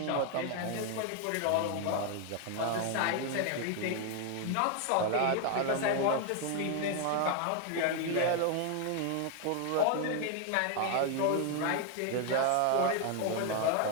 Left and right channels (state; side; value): different; both; correlation 0.01